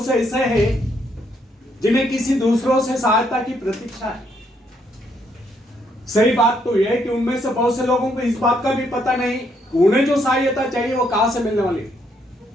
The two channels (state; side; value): normal; both; correlation 0.73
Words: से ऐसे हैं जिन्हें किसी दूसरों से सहायता की प्रतीक्षा है? सही बात तो यह है कि उनमें से बहुत से लोगों को इस बात का भी पता नहीं उन्हें जो सहायता चाहिए वो कहां से मिलने वाली है।